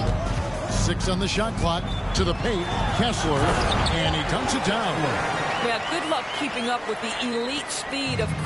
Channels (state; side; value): identical; both; correlation 1.00